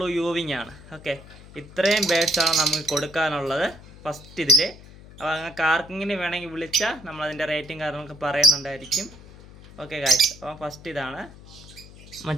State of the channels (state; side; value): noise; left; hum, 19 dB below the sound